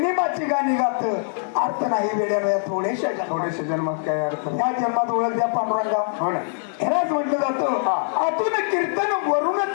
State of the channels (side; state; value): right; silent; 63 dB below the other